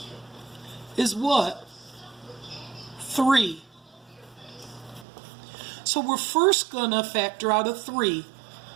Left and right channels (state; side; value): drops out; left; at 5.1 s